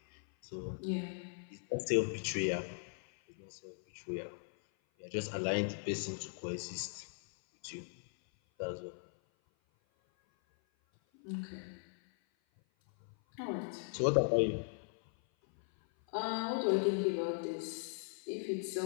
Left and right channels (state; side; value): silent; right; 52 dB below the other